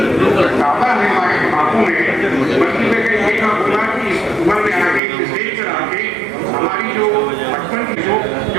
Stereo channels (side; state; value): left; drops out; at 5.0 s